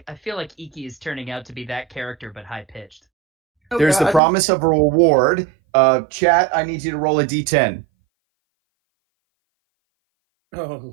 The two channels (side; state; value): left; drops out; at 4.2 s